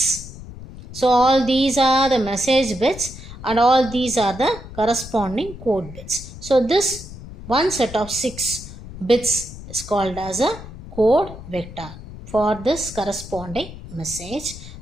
So all these are the message bits and all these are the corresponding code bits. So this one set of 6 bits is called as a code vector for this corresponding message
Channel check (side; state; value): left; noise; rumble, 14 dB below the sound